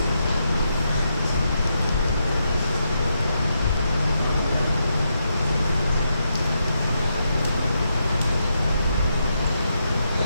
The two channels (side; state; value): both; inverted; correlation -0.82